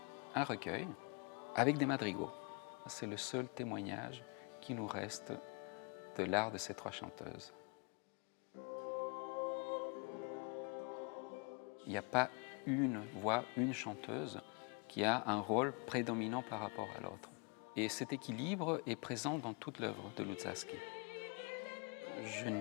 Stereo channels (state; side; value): quieter; right; 34.6 dB